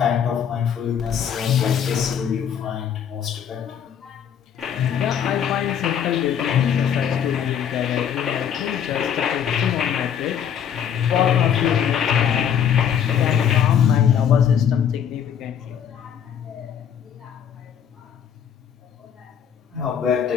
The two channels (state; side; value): quieter; right; 8.5 dB